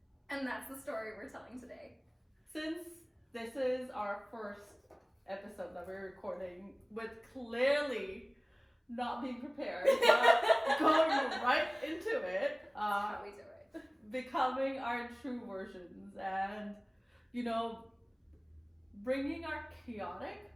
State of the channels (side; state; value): both; identical; correlation 1.00